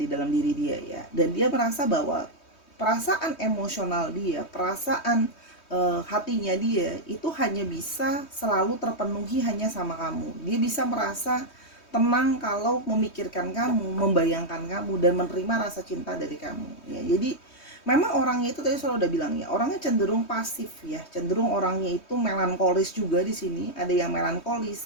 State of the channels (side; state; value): right; late; 3.2 ms